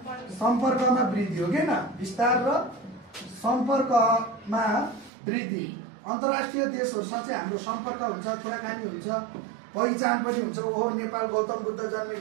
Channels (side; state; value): left; drops out; at 5.1 s